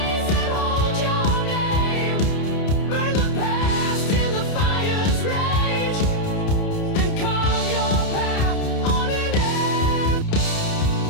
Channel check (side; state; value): right; late; 30 ms